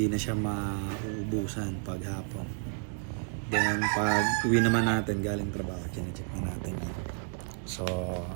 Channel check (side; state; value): left; silent; 57 dB below the other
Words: na siya mauubusan paghapon. Then, pag uwi naman natin galing trabaho, check na natin yan. So,